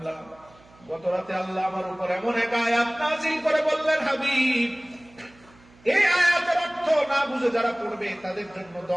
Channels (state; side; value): noise; right; hum, 27 dB below the sound